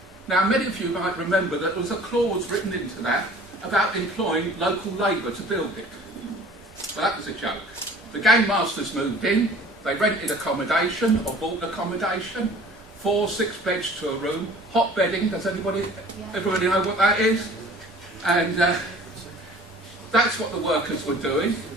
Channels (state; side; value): normal; both; correlation 0.48